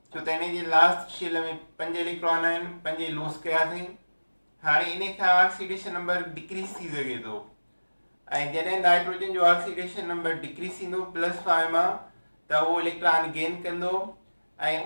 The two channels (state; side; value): inverted; both; correlation -1.00